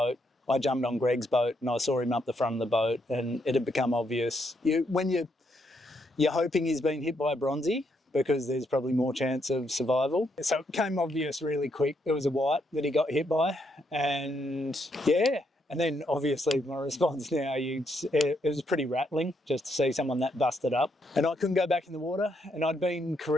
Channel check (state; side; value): normal; both; correlation 0.76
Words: I jumped on Greg's boat, and I saw him up the front of the boat, and it had become obvious. When you're hoping he's been hit by a bronzy, because there's probably more chance of survival. So it became obvious really quick. It was a white that he got hit by. And yeah, and then obviously my response now, it was pretty rattling just to see someone that busted up. And I couldn't go back in the water. And I'd been